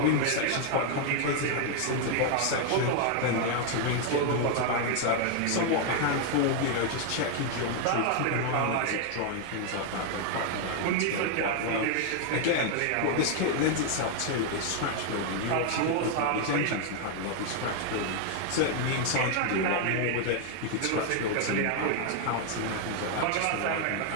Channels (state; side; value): different; both; correlation 0.00